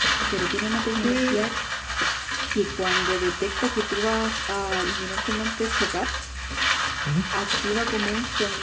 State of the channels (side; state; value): both; identical; correlation 1.00